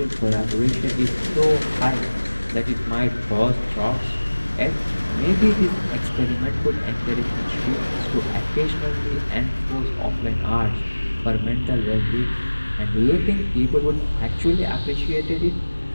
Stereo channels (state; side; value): inverted; both; correlation -1.00